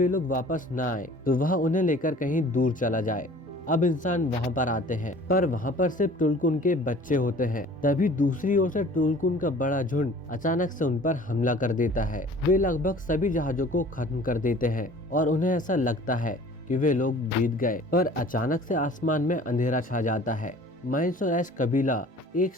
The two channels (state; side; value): normal; both; correlation 0.48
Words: लोग वापस ना आए तो वह उन्हें लेकर कहीं दूर चला जाए। अब इंसान वहाँ पर आते हैं, पर वहाँ पर सिर्फ टुलकुन के बच्चे होते हैं। तभी दूसरी ओर से टुलकुन का बड़ा झुंड अचानक से उन पर हमला कर देता है। वे लगभग सभी जहाजों को खत्म कर देते हैं और उन्हें ऐसा लगता है कि वे लोग जीत गए, पर अचानक से आसमान में अंधेरा छा जाता है। माइल्स और एश कबीला एक